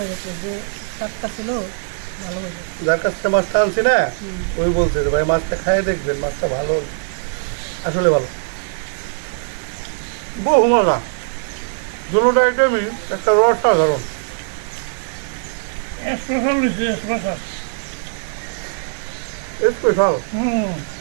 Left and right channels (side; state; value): left; silent; 59 dB below the other